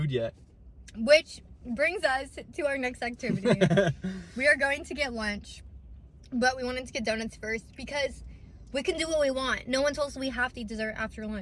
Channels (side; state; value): both; identical; correlation 1.00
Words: yet. Which brings us to our next activity. We are going to get lunch, but we wanted to get donuts first because we can do what we want. No one told us we have to eat dessert after